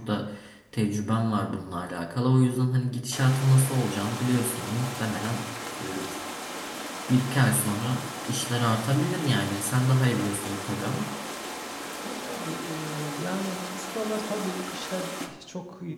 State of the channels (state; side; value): identical; both; correlation 1.00